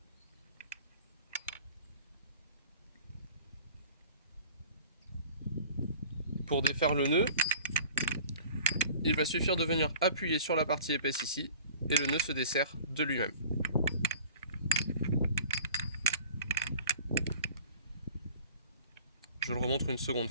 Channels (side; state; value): both; inverted; correlation -0.47